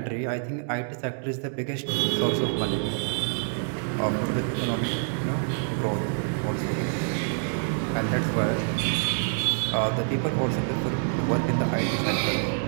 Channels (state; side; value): silent; left; 60 dB below the other